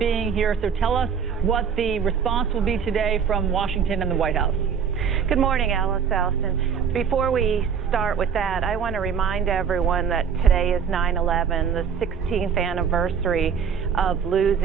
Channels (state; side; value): quieter; left; 7.1 dB